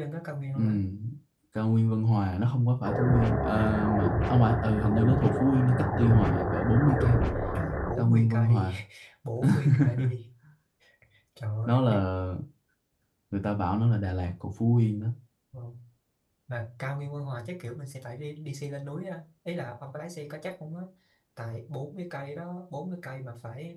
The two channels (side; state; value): both; identical; correlation 1.00